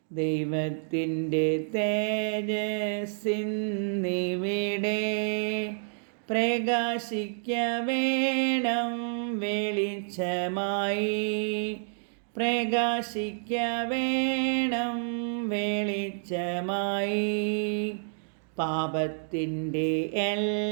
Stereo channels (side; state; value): left; silent; digital silence